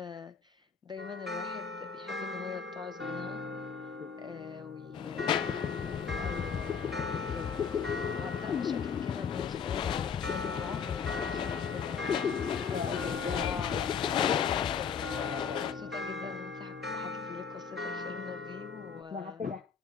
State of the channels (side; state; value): right; quieter; 6.3 dB